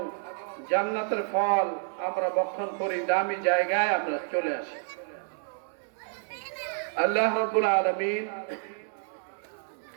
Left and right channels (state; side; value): silent; left; 57 dB below the other